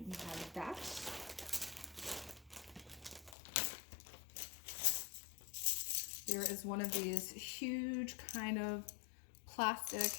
have that. There is one of these huge kind of plastic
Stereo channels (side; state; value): right; drops out; at 3.4 s